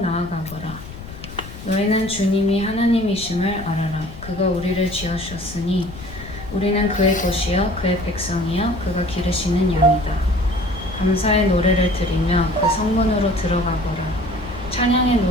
너희는 주님이 하나님이심을 알아라. 그가 우리를 지으셨으니 우리는 그의 것이요 그의 백성이요 그가 기르시는 양이다. 감사의 노래를 드리며 그 성문으로 들어가거라. 찬양의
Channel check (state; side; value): noise; left; rumble, 14 dB below the sound